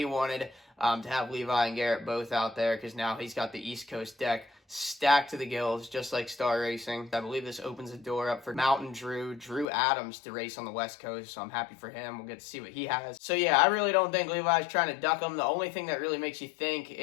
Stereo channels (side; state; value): right; drops out; at 9.7 s